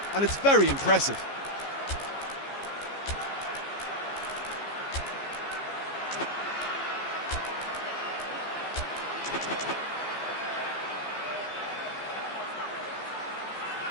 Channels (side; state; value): right; late; 14 ms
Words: and it's very impressive.